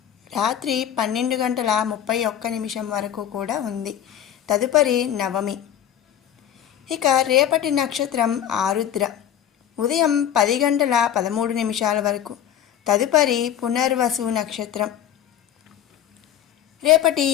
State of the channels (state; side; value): quieter; right; 10.3 dB